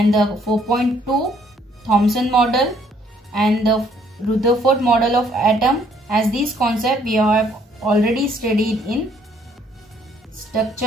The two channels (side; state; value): both; normal; correlation 0.64